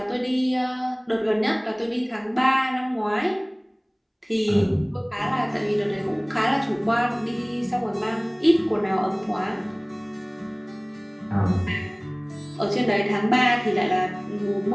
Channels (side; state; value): both; identical; correlation 1.00